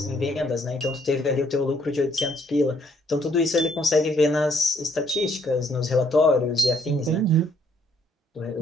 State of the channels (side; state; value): both; normal; correlation 0.68